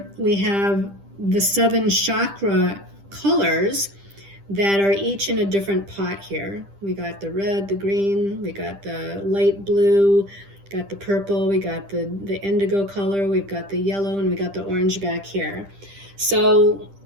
we have the 7 chakra colors that are each in a different pot here. We got the red, the green, we got the light blue, got the purple, we got the indigo color, we've got the yellow, and we got the orange back here. So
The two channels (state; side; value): late; left; 10 ms